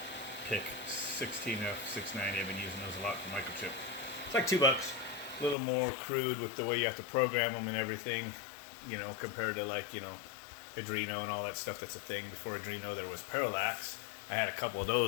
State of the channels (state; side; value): drops out; right; at 5.6 s